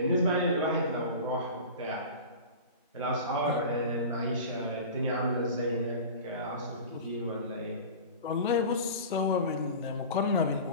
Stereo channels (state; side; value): inverted; both; correlation -0.34